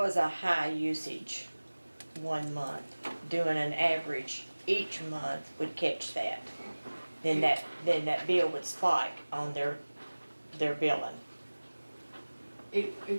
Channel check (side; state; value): both; inverted; correlation -1.00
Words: a high usage 1 month, doing an average each month would catch that. Then that bill would spike on their billing.